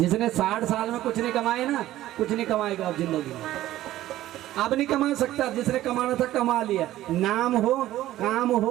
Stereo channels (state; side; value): quieter; left; 14.5 dB